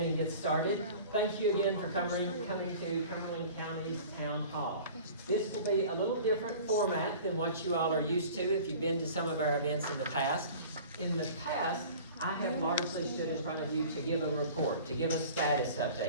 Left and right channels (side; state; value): both; inverted; correlation -0.43